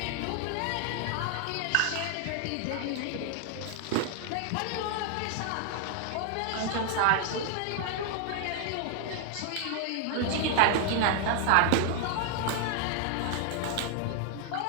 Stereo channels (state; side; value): different; both; correlation 0.00